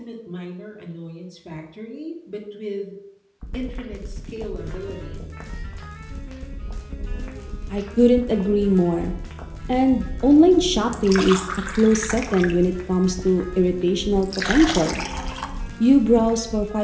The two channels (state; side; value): identical; both; correlation 1.00